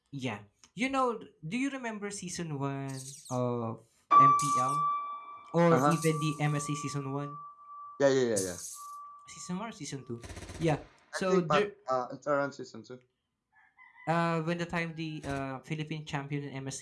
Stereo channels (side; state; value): both; identical; correlation 1.00